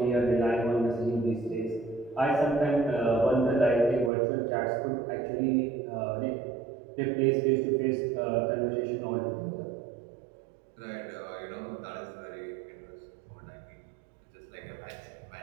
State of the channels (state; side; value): drops out; left; at 4.1 s